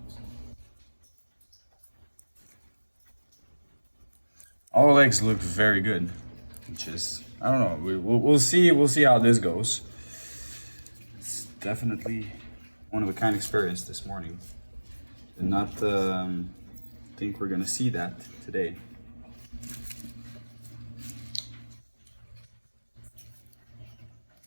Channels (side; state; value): both; inverted; correlation -1.00